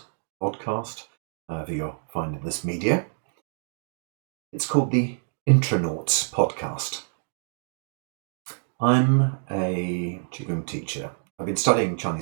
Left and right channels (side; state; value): left; silent; digital silence